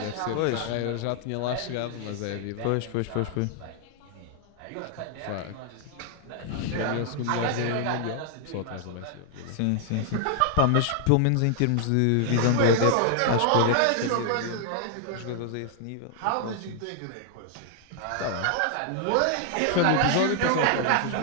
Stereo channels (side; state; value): both; different; correlation 0.00